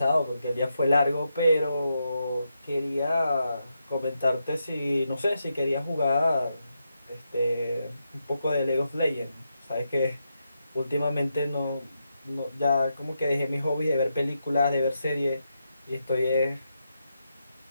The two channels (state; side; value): inverted; both; correlation -0.84